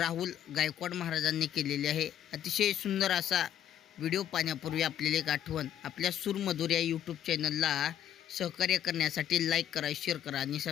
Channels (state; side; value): quieter; right; 10.6 dB